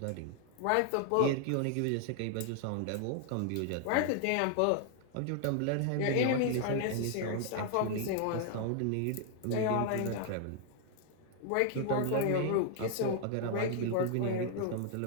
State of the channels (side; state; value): both; different; correlation 0.00